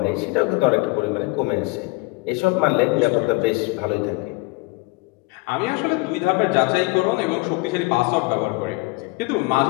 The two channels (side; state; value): right; quieter; 24.9 dB